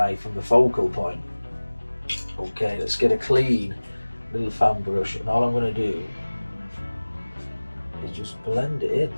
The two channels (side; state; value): both; inverted; correlation -1.00